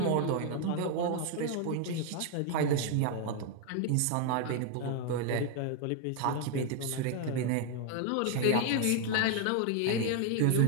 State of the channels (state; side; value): different; both; correlation 0.01